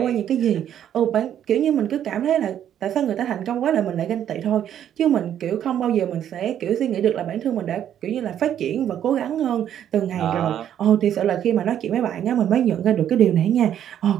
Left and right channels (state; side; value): quieter; left; 10.2 dB